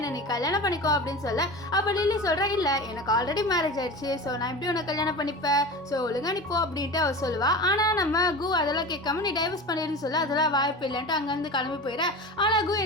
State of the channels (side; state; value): both; normal; correlation 0.31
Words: நீ கல்யாணம் பண்ணிக்கோ அப்படின்னு சொல்ல. அப்போ லில்லி சொல்கிறா, இல்லை எனக்கு ஆல்ரெடி மேரேஜ் ஆயிடுச்சு, ஸோ நான் எப்படி உன்னை கல்யாணம் பண்ணிப்பேன், ஸோ ஒழுங்கா நீ போ அப்படின்ட்டு அவள் சொல்லுவா. ஆனால் நம்ம கோ அதெல்லாம் கேட்காம நீ டைவர்ஸ் பண்ணிடுன்னு சொல்ல. அதெல்லாம் வாய்ப்பு இல்லைன்ட்டு அங்கேருந்து கிளம்பி போயிட. ஆனால் கோ